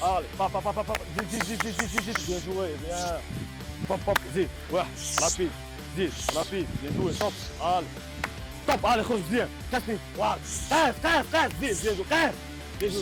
علي طب طب طب زيد زيد زيد زيد زيد زيد بيان جوي بيان طب زيد واحد رابيد زيد رابيد بيان جوي طب علي طب علي خرج مزيان كاسني فوالا قاس زيد بيان جو قاس بيان جو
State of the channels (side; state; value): both; identical; correlation 1.00